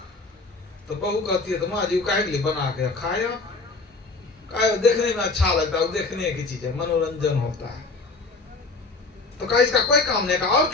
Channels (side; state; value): right; quieter; 3.6 dB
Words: तो बहू कहती है तो माँ जी काहे के लिए बना के खाया, देखने में अच्छा लगता है, देखने की चीज है, मनोरंजन होता है। तो कहा इसका कोई काम नहीं। कहा और